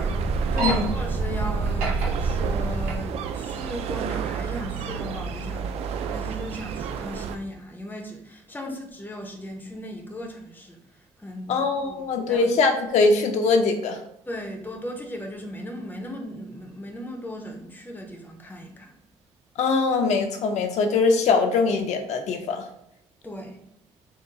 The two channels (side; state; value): both; normal; correlation 0.49